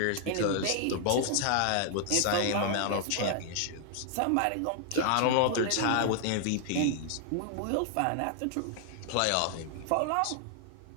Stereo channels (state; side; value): different; both; correlation 0.00